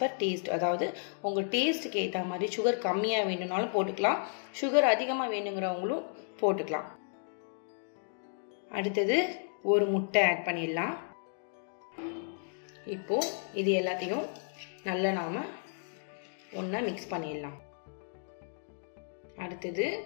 பர் டேஸ்ட், அதாவது உங்கள் டேஸ்ட்டுக்கு ஏற்ற மாதிரி சுகர் கம்மியாக வேணும்னாலும் போட்டுக்கலாம், சுகர் அதிகமாக வேணுங்கிறவங்களும் போட்டுக்கலாம். அடுத்தது ஒரு முட்டை ஆட் பண்ணிடலாம். இப்போ இது எல்லாத்தையும் நல்லா நாம ஒன்றா மிக்ஸ் பண்ணிடலாம். அடுத்தது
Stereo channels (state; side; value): silent; right; digital silence